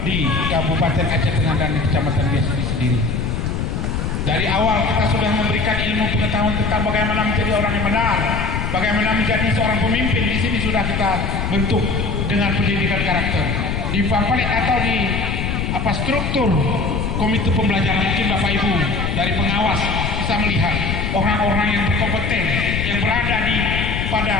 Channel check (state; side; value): noise; left; rumble, 1 dB below the sound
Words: di Kabupaten Aceh Tengah dan di Kecamatan dia sendiri. Dari awal kita sudah memberikan ilmu pengetahuan tentang bagaimana menjadi orang yang benar, bagaimana menjadi seorang pemimpin. Di sini sudah kita bentuk dengan pendidikan karakter. Di pamflet atau di struktur komite pembelajaran, mungkin Bapak Ibu dari pengawas bisa melihat orang-orang yang berkompeten yang berada di pada